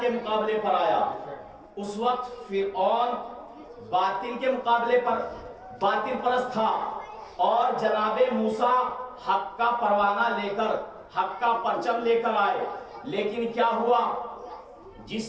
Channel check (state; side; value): identical; both; correlation 1.00